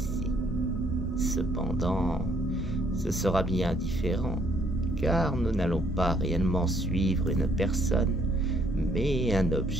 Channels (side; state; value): both; normal; correlation 0.67